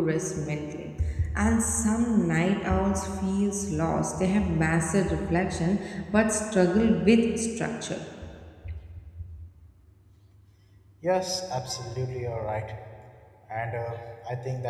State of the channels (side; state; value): both; identical; correlation 1.00